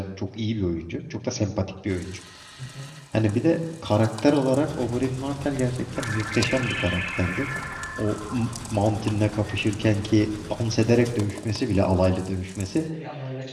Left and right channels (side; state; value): both; identical; correlation 1.00